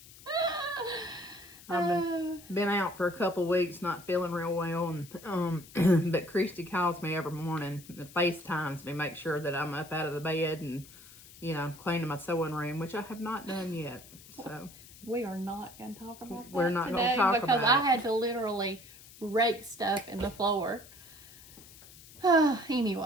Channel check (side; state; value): left; noise; hiss, 20 dB below the sound